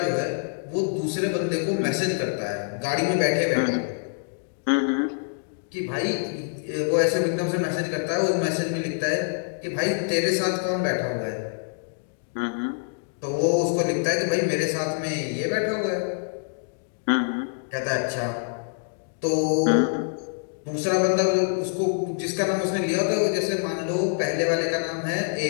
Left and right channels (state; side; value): silent; right; 61 dB below the other